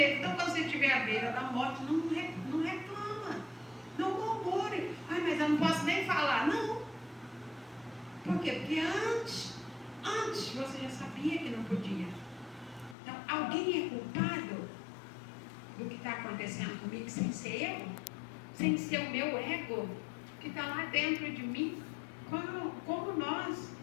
Então quando você estiver à beira da morte, não reclama, não murmure. Ah, mas eu não posso nem falar. Não. Por quê? Porque antes você já sabia que não podia. Então, alguém é culpado do que está acontecendo comigo sem ser eu? Sem ser o meu ego que está lá dentro de mim? Como nós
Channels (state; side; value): drops out; right; at 13.0 s